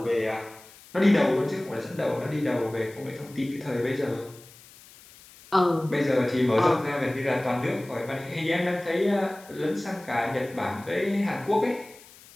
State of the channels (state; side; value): noise; left; hiss, 22 dB below the sound